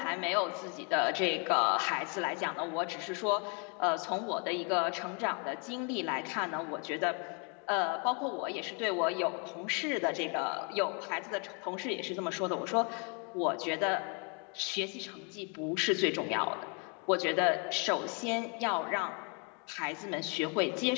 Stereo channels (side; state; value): right; quieter; 35.8 dB